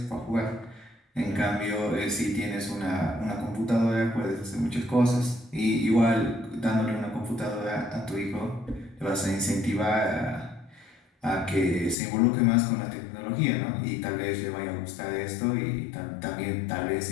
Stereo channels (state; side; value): drops out; right; at 12.0 s